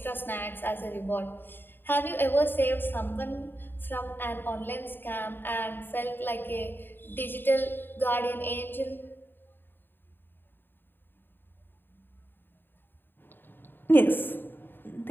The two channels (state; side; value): late; right; 0.097 ms